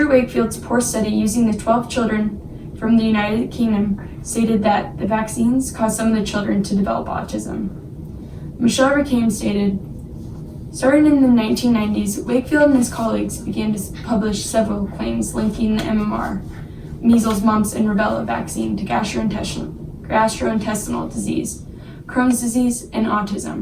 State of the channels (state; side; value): identical; both; correlation 1.00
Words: Wakefield's poor study using the 12 children from the United Kingdom stated that the vaccines caused some of the children to develop autism. Michelle Rickham stated, starting in the 1990s, Wakefield and his colleagues began to publish several claims linking the MMR, measles, mumps, and rubella vaccine to gastrointestinal disease, Crohn's disease, and